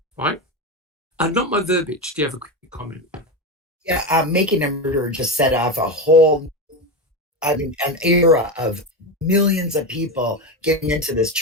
right? Not my verbiage. Do you have a quick comment? Yeah, Making a Murderer just set off a whole, an era of millions of people getting into this.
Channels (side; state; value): both; normal; correlation 0.16